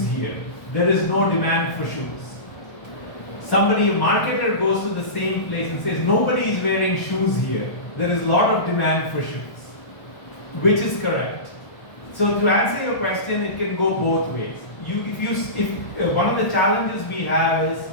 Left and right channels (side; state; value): right; late; 1.2 ms